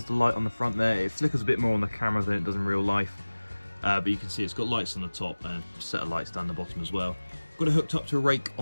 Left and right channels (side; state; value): both; inverted; correlation -1.00